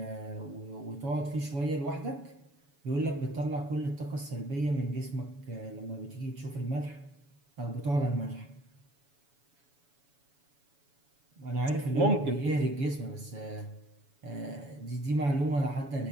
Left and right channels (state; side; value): late; left; 7.1 ms